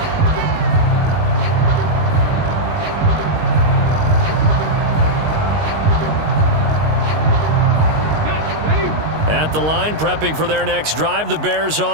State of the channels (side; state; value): left; late; 19 ms